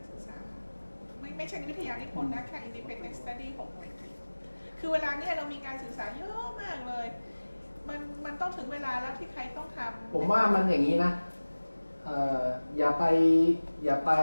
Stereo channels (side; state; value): both; inverted; correlation -1.00